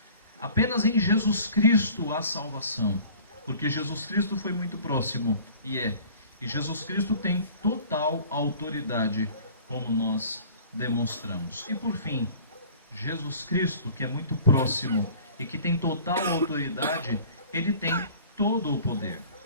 Apenas em Jesus Cristo há salvação. Porque Jesus Cristo foi muito próximo, e é. E Jesus Cristo tem total autoridade, como nós demonstramos. E por fim, Jesus Cristo, que é muito próximo e que tem total autoridade, ele tem todo o poder.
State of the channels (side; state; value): both; inverted; correlation -0.47